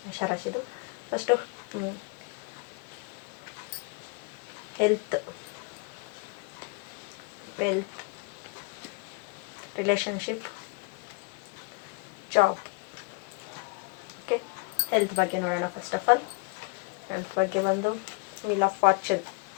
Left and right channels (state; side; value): quieter; right; 30.5 dB